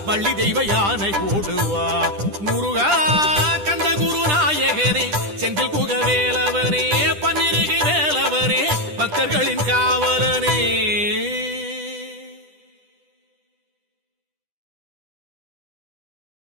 வள்ளி தெய்வ யானை ஓடுவா. முருகா கந்த குருநாயகனே செந்தில் குகவேலவனே பன்னிருகை வேலவனே பக்தர்களின் காவலனே.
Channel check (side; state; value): left; late; 10 ms